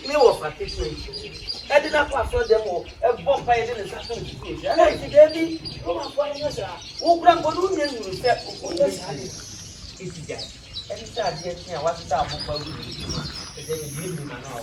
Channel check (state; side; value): identical; both; correlation 1.00